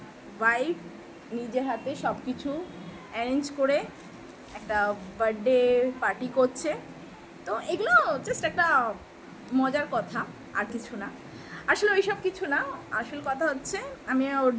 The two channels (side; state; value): both; identical; correlation 1.00